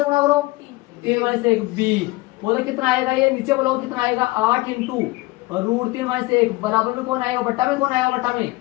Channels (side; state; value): right; quieter; 21.1 dB